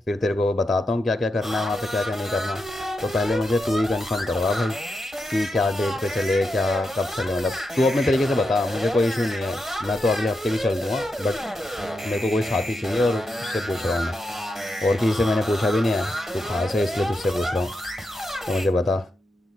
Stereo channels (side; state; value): both; normal; correlation 0.86